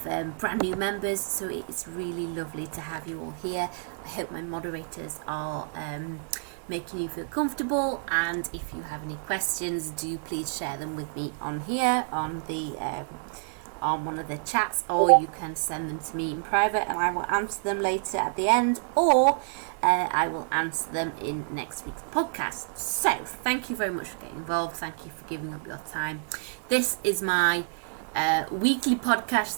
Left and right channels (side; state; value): left; silent; 59 dB below the other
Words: brand new members, so it's really lovely to have you all here. I hope my moderators are making you feel comfortable, and if you have any questions, do please share them with me on here on the on one of the chats, or you can send them to me in private and I will answer them later at the end, or I will answer them in next week's podcast. So thank you very much for getting involved. Thank you for giving up your time. This is my weekly